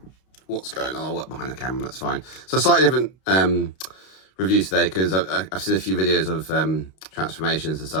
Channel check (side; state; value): right; late; 32 ms